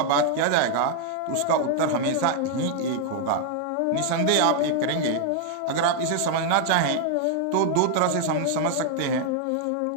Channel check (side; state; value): both; different; correlation 0.00